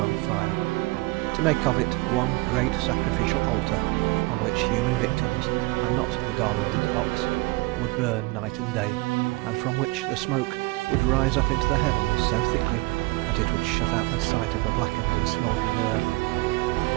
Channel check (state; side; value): quieter; left; 23.3 dB